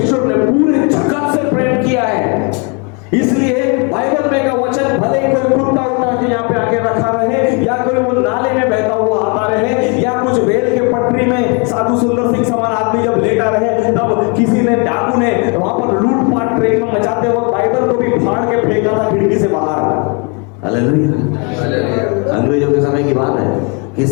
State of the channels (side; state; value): right; quieter; 33.6 dB